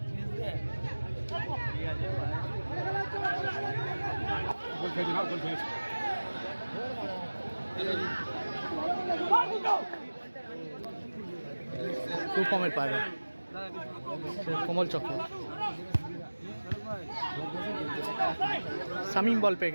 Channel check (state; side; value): inverted; both; correlation -1.00